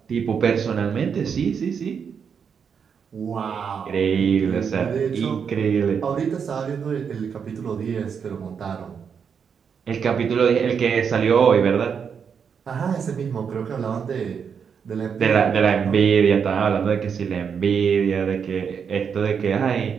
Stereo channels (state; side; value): quieter; left; 6.8 dB